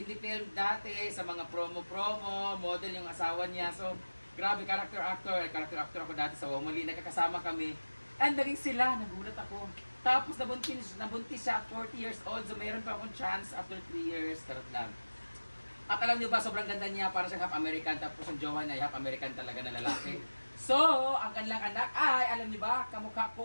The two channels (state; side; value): inverted; both; correlation -1.00